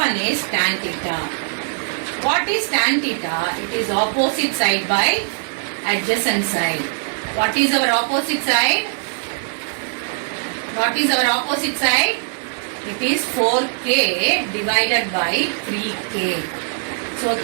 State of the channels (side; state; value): left; silent; digital silence